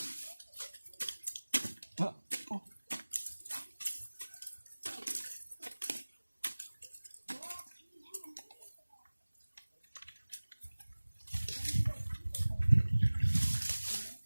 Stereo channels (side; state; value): both; inverted; correlation -1.00